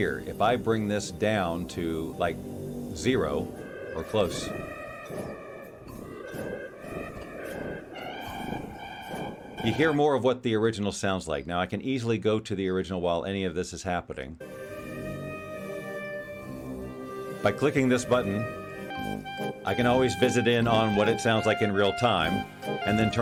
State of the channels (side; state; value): both; identical; correlation 1.00